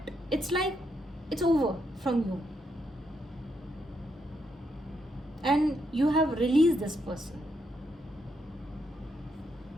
it's like it's over from you, and you have released this person.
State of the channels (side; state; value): both; normal; correlation 0.79